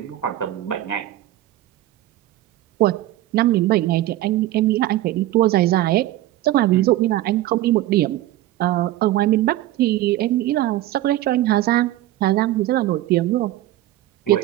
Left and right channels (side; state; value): left; quieter; 15.1 dB